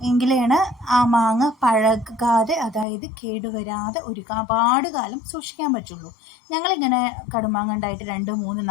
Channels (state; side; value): drops out; right; at 2.9 s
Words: എങ്കിലാണ് ആ മാങ്ങ പഴകാതെ, അതായത് കേടുവരാതെ ഒരുപാട് കാലം സൂക്ഷിക്കാൻ പറ്റുള്ളൂ. ഞങ്ങളിങ്ങനെ കടുമാങ്ങ ഉണ്ടായിട്ട് 2, 3,